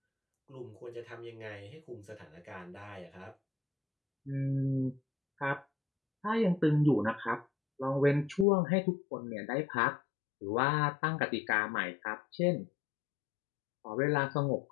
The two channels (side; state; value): right; drops out; at 8.5 s